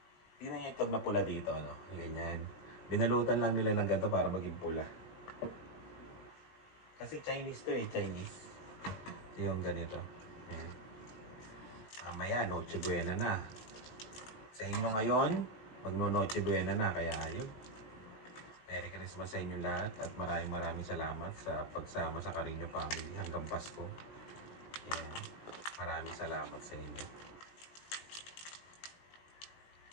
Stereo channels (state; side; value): late; right; 19 ms